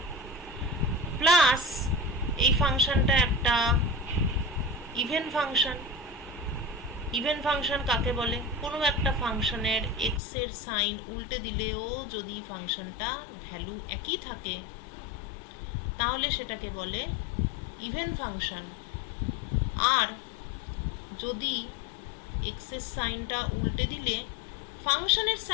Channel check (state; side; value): drops out; right; at 10.2 s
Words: plus এই ফাংশনটা একটা ইভেন ফাংশন। ইভেন ফাংশন কাকে বলে? কোনো একটা ফাংশনের এক্স এর সাইন উল্টে দিলেও যদি ফাংশনটা ভ্যালু একই থাকে তাহলে সেটাকে বলে ইভেন ফাংশন। আর যদি এক্স এর সাইনটা উল্টে দিলে ফাংশনের